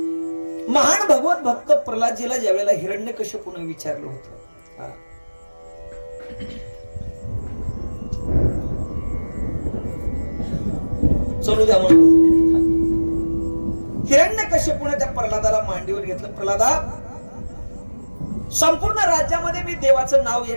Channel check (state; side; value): inverted; both; correlation -1.00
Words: महान भगवत भक्त प्रल्हादजीला ज्यावेळेला हिरण्यकश्यपूने विचारलं होतं, चलू द्या म्हणून हिरण्यकश्यपूने त्या प्रल्हादाला मांडीवर घेतलं. प्रल्हादा, संपूर्ण राज्यामध्ये मी देवाचं नाव या